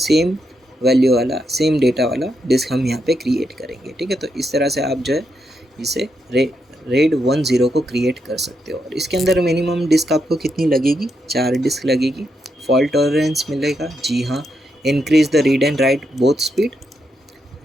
वैल्यू वाला, सेम डेटा वाला डिस्क हम यहाँ पे क्रिएट करेंगे, ठीक है। तो इस तरह से आप जो है इसे रेड 10 को क्रिएट कर सकते हो। और इसके अंदर मिनिमम डिस्क आपको कितनी लगेगी, 4 डिस्क लगेगी। फॉल्ट टॉलरेंस मिलेगा, जी हाँ। Increase the read and right both speed.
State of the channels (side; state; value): both; normal; correlation 0.81